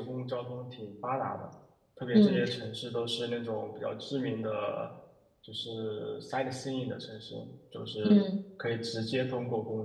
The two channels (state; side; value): identical; both; correlation 1.00